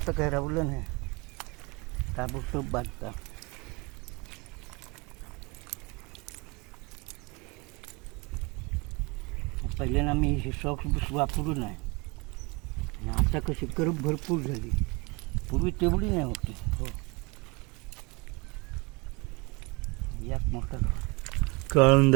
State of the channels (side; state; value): left; quieter; 27.5 dB